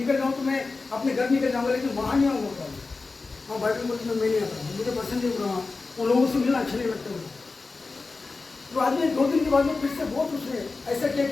जाऊँ तो मैं अपने घर निकल जाऊँगा, लेकिन वहाँ नहीं आऊँगा। वहाँ बाइबल कॉलेज में मैं नहीं आता, मुझे पसंद नहीं बोला, वहाँ उन लोगों से मिलना अच्छा नहीं लगता मुझे। तो आज में 2 दिन के बाद में फिर से बहुत उसने ऐसा किया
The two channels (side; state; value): right; quieter; 3.9 dB